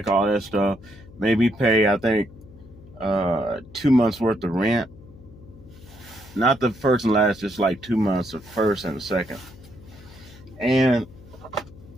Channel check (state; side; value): noise; left; hum, 20 dB below the sound